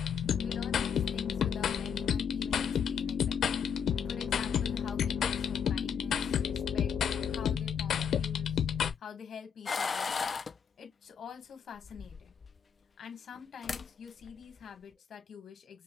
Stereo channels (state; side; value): quieter; right; 7.4 dB